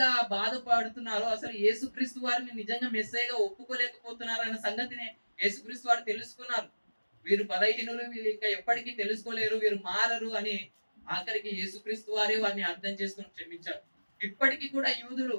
బాధపడుతున్నారో, అసలు యేసుక్రీస్తు వారిని నిజంగా మెస్సయ్యగా ఒప్పుకోలేకపోతున్నారు అన్న సంగతిని యేసుక్రీస్తు వారు తెలుసుకున్నారు. వీరు బలహీనులు, వీళ్ళు ఇంకా ఎప్పటికీ తెలుసుకోలేరు, వీరు మారరు అని ఆఖరికి యేసుక్రీస్తు వారే వారిని అర్థం చేసుకుని క్షమించారు. ఇప్పటికీ కూడా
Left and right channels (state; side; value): inverted; both; correlation -1.00